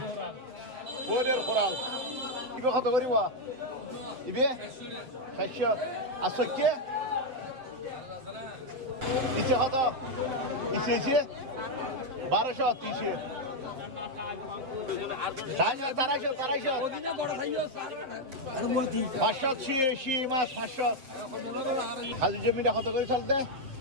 কোরের কোরাল ইবে কত করিব ইবে 600 আর সৈক্য ইসে কত ইসে 1200 300 580 মাছ 500 খালি জমিটা কত করে চলতে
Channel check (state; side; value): late; left; 7.7 ms